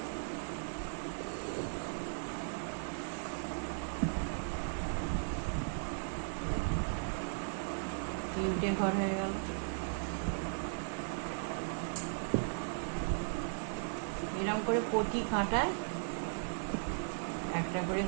তিনটে ঘর হয়ে গেল। এরকম করে প্রতি কাঁটায় একটা করে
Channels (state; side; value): silent; left; 53 dB below the other